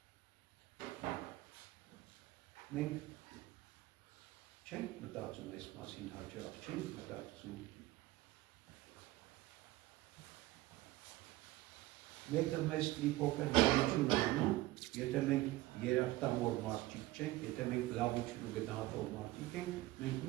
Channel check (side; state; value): left; quieter; 17.9 dB